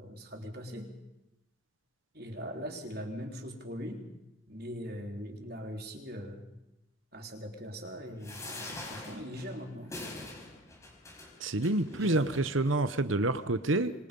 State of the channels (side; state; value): both; normal; correlation 0.37